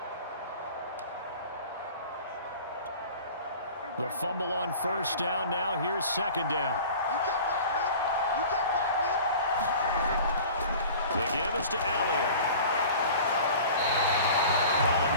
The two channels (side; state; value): both; inverted; correlation -0.42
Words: The fumble on first down. Now here's second down. The give is to Elliott. Calling